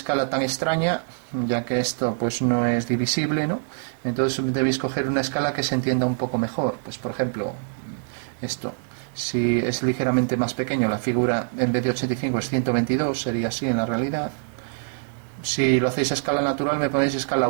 tan extraña, ya que esto pues no es divisible, ¿no? Entonces debéis coger una escala que se entienda un poco mejor. Pues por ejemplo, esto, si es ligeramente más pequeño, la figura en vez de 85 es 122, sería así en la realidad. Si lo hacéis a escala natural me ponéis escala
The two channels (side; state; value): left; silent; digital silence